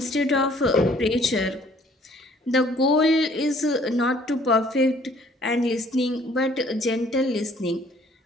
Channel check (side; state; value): both; normal; correlation 0.59